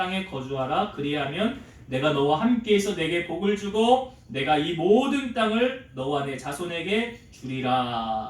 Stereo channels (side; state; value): both; identical; correlation 1.00